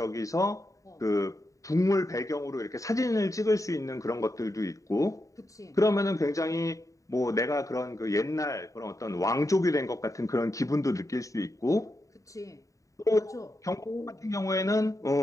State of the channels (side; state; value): right; late; 0.16 ms